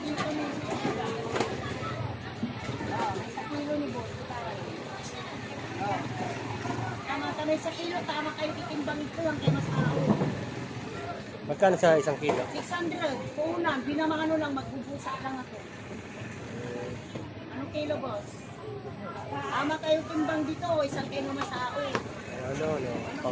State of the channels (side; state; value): both; identical; correlation 1.00